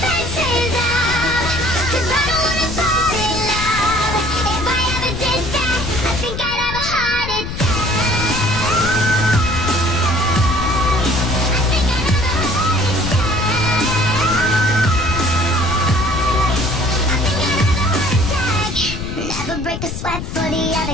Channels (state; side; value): noise; left; rumble, 7 dB below the sound